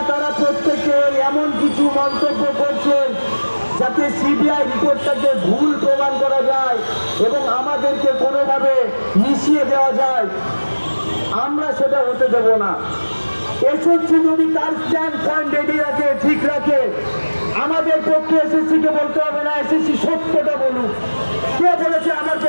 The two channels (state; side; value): inverted; both; correlation -1.00